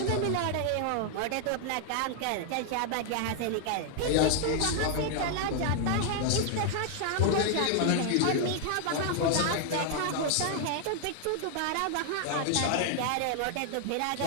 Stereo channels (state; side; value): different; both; correlation 0.00